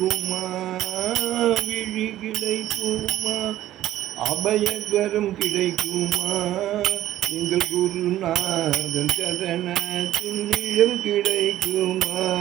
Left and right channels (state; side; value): quieter; left; 13.7 dB